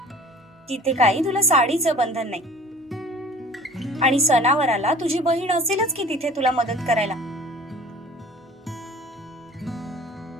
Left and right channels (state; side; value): normal; both; correlation 0.46